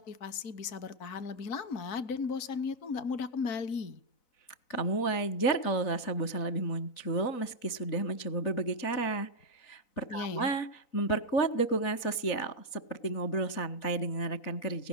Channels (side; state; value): right; late; 4.0 ms